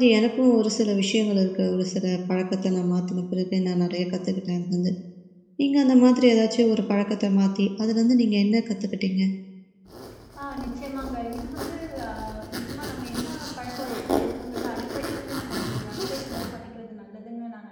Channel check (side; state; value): both; identical; correlation 1.00